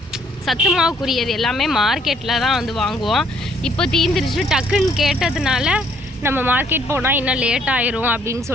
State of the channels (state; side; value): normal; both; correlation 0.65